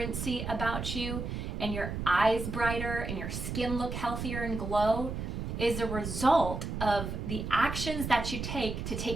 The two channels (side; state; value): right; noise; rumble, 4 dB below the sound